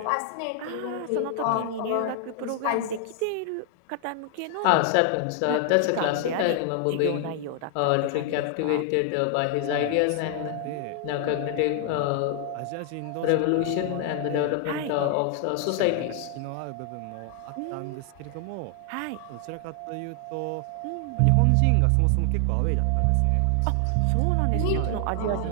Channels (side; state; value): both; different; correlation 0.00